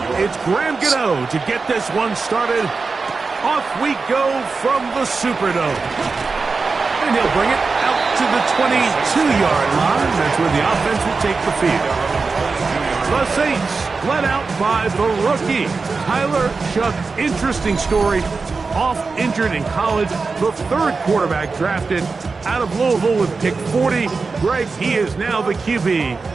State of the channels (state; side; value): quieter; left; 4.4 dB